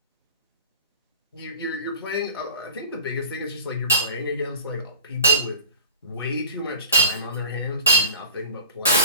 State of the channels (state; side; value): inverted; both; correlation -0.39